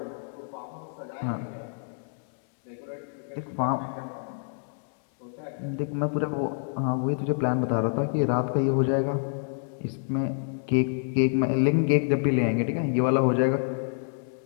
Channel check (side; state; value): right; silent; 60 dB below the other